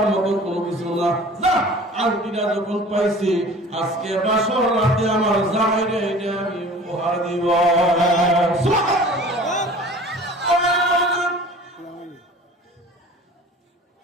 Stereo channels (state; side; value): normal; both; correlation 0.44